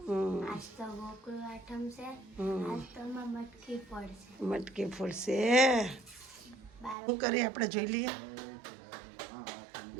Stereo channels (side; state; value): left; drops out; at 7.0 s